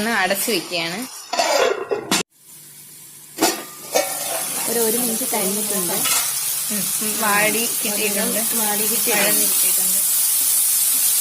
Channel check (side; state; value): both; identical; correlation 1.00